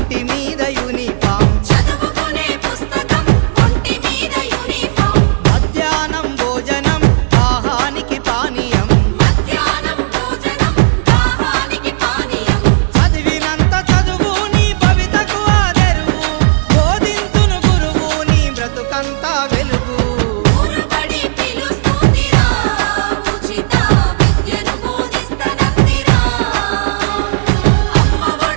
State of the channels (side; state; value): left; silent; digital silence